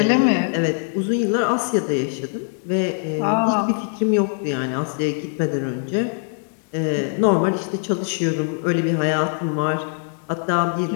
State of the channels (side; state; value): right; silent; digital silence